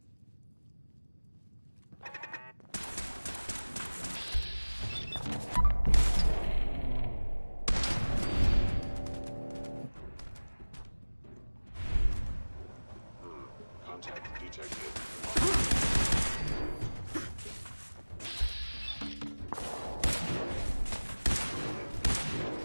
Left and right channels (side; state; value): both; inverted; correlation -1.00